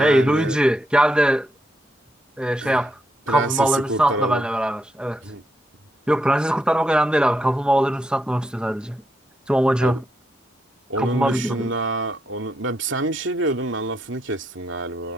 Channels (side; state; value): both; normal; correlation 0.80